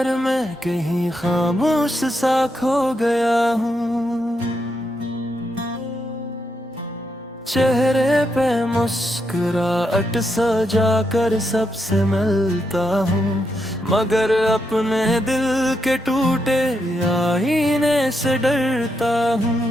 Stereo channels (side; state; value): both; normal; correlation 0.82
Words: में कहीं खामोश सा खो गया हूँ। चेहरे पे मुस्कुराहट सजा कर सबसे मिलता हूँ, मगर अपने दिल के टूटे आईने से डरता